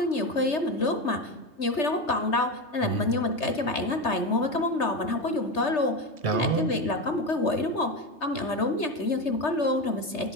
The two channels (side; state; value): right; late; 3.3 ms